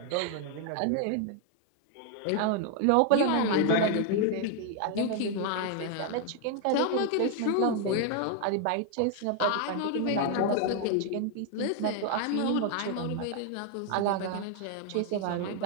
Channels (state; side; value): different; both; correlation 0.00